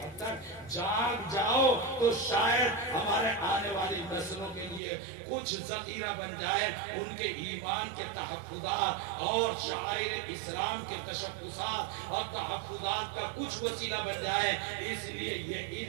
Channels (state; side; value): drops out; left; at 4.8 s